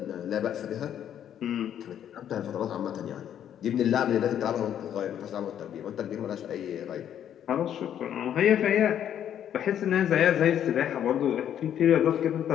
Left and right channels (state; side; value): quieter; right; 10.0 dB